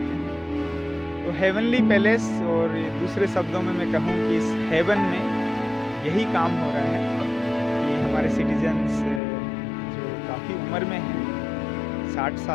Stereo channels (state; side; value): drops out; right; at 9.2 s